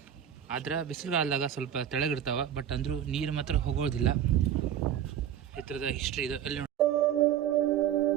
ಆದ್ರೆ ಬಿಸಿಲುಗಾಲದಾಗ ಸ್ವಲ್ಪ ತೆಳಗಿರ್ತಾವೆ, ಬಟ್ ಅಂದರೂ ನೀರು ಮಾತ್ರ ಹೋಗೋದಿಲ್ಲ. ಈ ಥರದ ಹಿಸ್ಟ್ರಿ ಇದೆ ಅಲ್ಲಿ.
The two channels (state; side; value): quieter; left; 9.9 dB